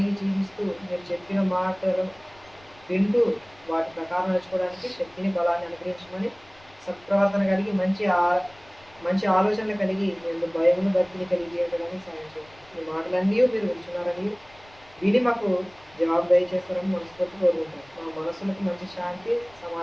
జీవిస్తూ మీరు చెప్పిన మాటలు వింటూ వాటి ప్రకారం నడుచుకోవడానికి శక్తిని బలాన్ని అనుగ్రహించమని, సత్ప్రవర్తన కలిగి మంచి ఆలోచనలు కలిగి మేము భయమును భక్తిని కలిగి జీవించడానికి సాయం చేయండి. ఈ మాటలన్నీ మీరు వింటున్నారని విని మాకు జవాబు దయచేస్తారని మనస్ఫూర్తి కోరుకుంటాం. మా మనసులకు మంచి శాంతి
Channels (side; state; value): left; noise; rumble, 27 dB below the sound